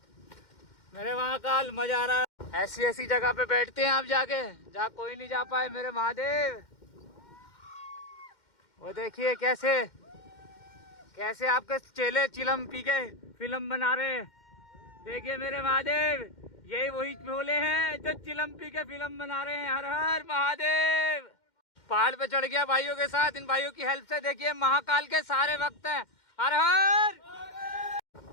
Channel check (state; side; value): late; right; 2.1 ms